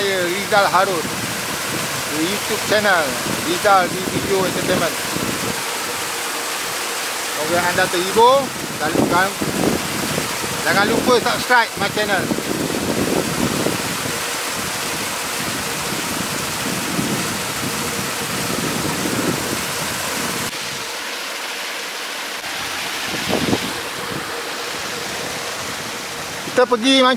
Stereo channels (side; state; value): both; identical; correlation 1.00